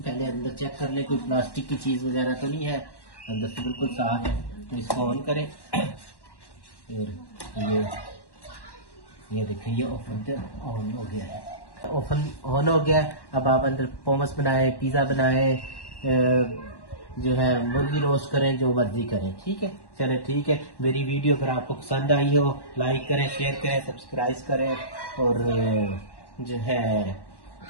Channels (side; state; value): right; late; 1.1 ms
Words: अंदर चेक कर ले, कोई प्लास्टिक की चीज़ वगैरह तो नहीं है, अंदर से बिल्कुल साफ है। तो इसको ऑन करें और ये देखें ये ओवन तो ऑन हो गया है। ओवन ऑन हो गया है। अब आप अंदर पोमस बनाए, पिज़्ज़ा बनाए, जो है मुर्गी रोस्ट करें, जो मर्जी करें। ठीक है, चले ठीक है। मेरी वीडियो अगर आपको पसंद आई हो लाइक करें, शेयर करें, सब्सक्राइब करें और जो है